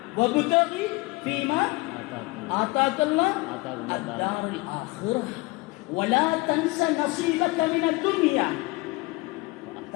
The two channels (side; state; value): right; quieter; 23.7 dB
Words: வபுதகி ஃபீமா ஆதாக்கல்லாஹ் அத்தாருல் ஆখিরাহ வலா தன்ஸ நஸீபக மினத் துன்யா.